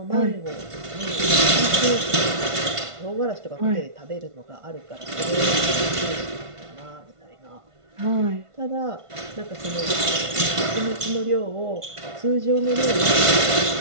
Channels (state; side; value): late; left; 1.5 ms